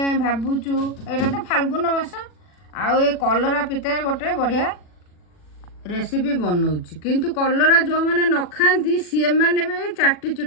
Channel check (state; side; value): late; right; 40 ms